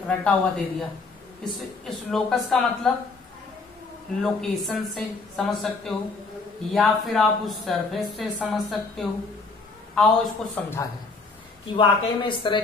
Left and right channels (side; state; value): right; quieter; 3.9 dB